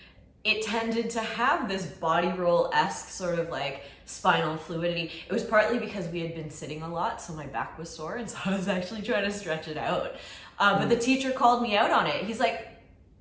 it tended to have this body roll-esque sort of like spinal fluidity. It was partly because we had been sitting a lot, so my back was sore, and so I was actually trying to stretch it out. But the teacher called me out on it. He's like,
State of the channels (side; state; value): both; identical; correlation 1.00